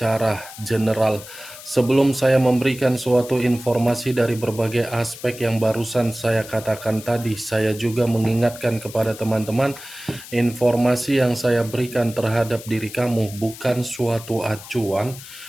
general. Sebelum saya memberikan suatu informasi dari berbagai aspek yang barusan saya katakan tadi, saya juga mengingatkan kepada teman-teman, informasi yang saya berikan terhadap diri kamu bukan suatu acuan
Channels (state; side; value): noise; left; hiss, 15 dB below the sound